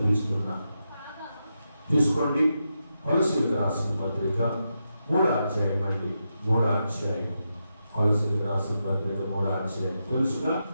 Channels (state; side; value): inverted; both; correlation -0.86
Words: తీసుకోండి. కొలస్సీలకు రాసిన పత్రిక 3వ అధ్యాయం అండి. 3వ అధ్యాయం కొలస్సీలకు రాసిన పత్రిక 3వ అధ్యాయం. తెలుసుగా